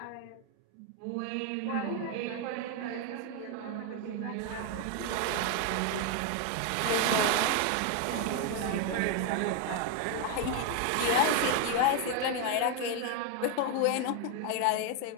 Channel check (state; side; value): different; both; correlation 0.01